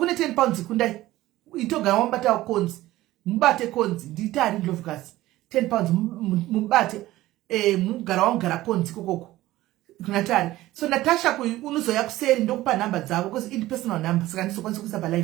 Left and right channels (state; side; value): quieter; left; 16.4 dB